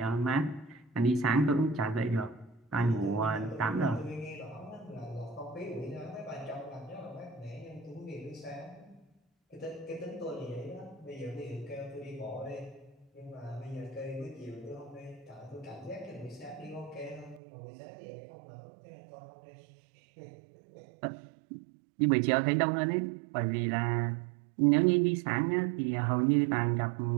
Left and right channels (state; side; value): drops out; left; at 17.4 s